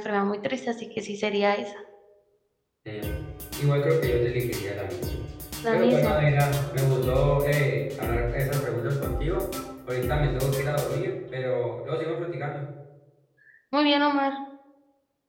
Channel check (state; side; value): identical; both; correlation 1.00